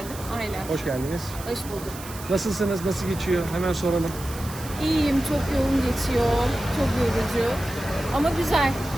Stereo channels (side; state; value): right; noise; hiss, 14 dB below the sound